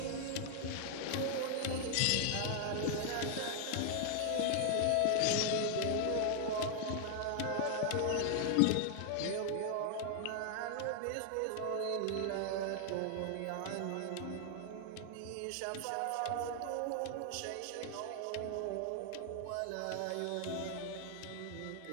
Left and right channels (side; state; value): both; different; correlation 0.00